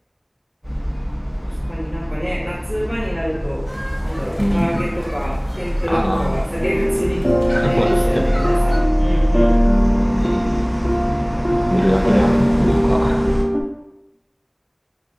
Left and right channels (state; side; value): identical; both; correlation 1.00